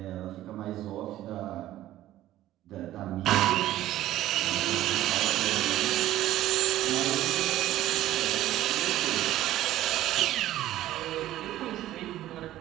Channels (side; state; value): left; quieter; 14.0 dB